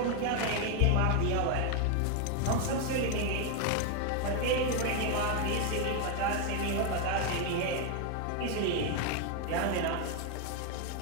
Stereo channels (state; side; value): different; both; correlation 0.01